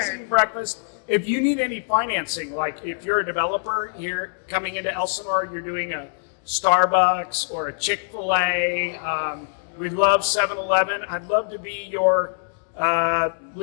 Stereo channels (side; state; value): right; silent; 63 dB below the other